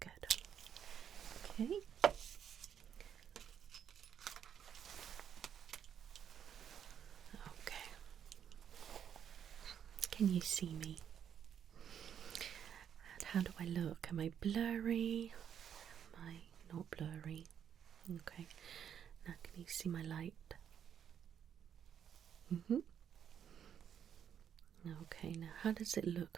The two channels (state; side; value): quieter; left; 8.7 dB